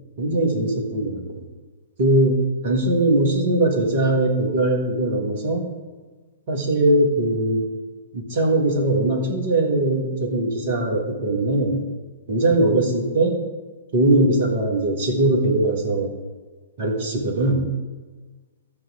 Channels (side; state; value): both; inverted; correlation -0.35